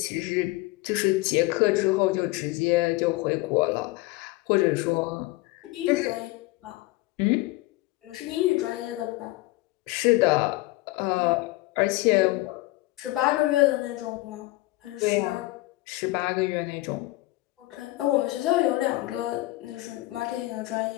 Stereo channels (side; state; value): right; quieter; 19.6 dB